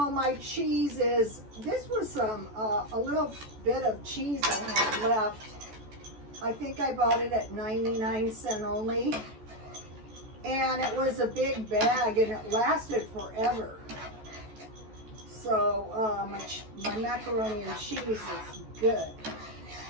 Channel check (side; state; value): left; late; 14 ms